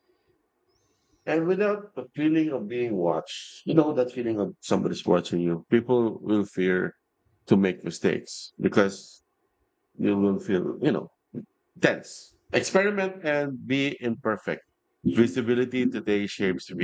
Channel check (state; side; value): identical; both; correlation 1.00